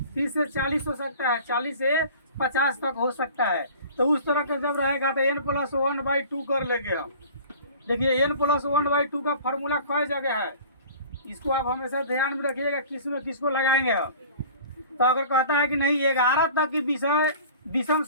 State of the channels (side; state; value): both; inverted; correlation -0.44